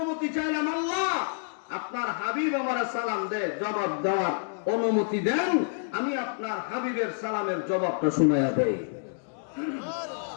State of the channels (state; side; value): silent; right; digital silence